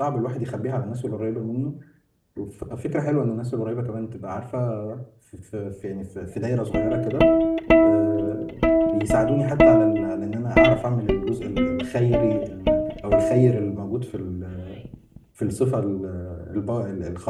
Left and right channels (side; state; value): both; identical; correlation 1.00